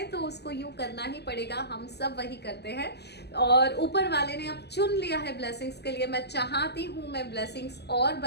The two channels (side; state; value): right; late; 0.49 ms